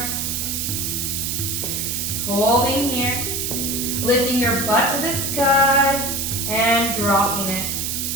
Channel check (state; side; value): noise; right; hiss, 1 dB below the sound